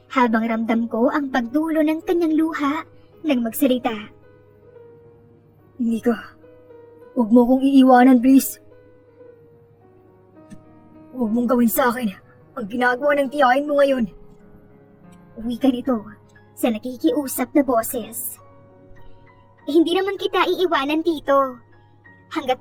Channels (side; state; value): both; identical; correlation 1.00